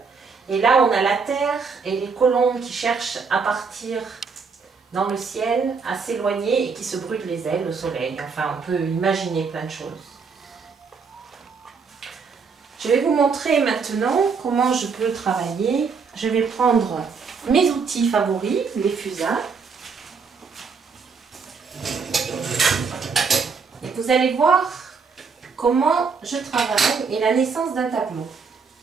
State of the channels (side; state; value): left; quieter; 5.3 dB